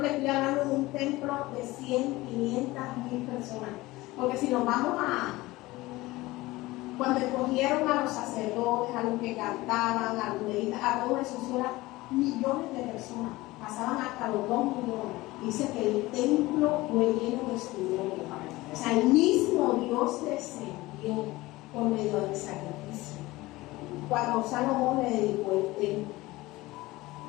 le estoy hablando de un templo de 100, 500, 1000 personas. Porque si nos vamos cuando escogieron a los sacerdotes, a los que cantaban, a los levitas, a todos esos, eran millones de personas. Pasaban hasta los 2 millones. Dice que el templo fue lleno de su gloria. O sea, el mismo Dios descendió por medio del sacrificio. Cuando Salomón le dedicó el templo.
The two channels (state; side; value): quieter; right; 19.5 dB